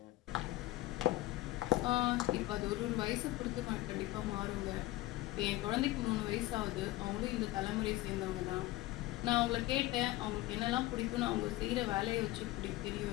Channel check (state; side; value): quieter; right; 17.6 dB